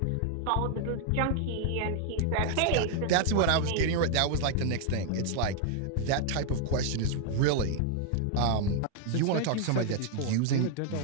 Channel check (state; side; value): different; both; correlation 0.00